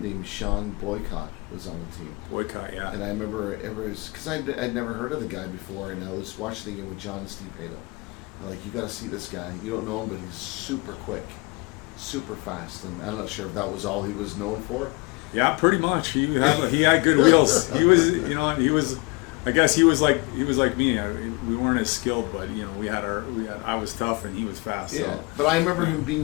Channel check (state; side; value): quieter; right; 26.7 dB